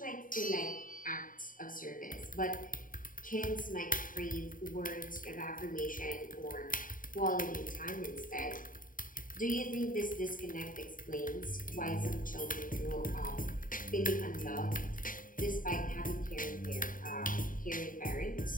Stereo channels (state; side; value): late; right; 0.39 ms